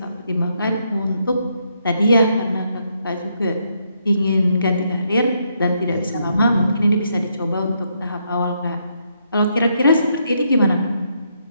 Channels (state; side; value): inverted; both; correlation -0.76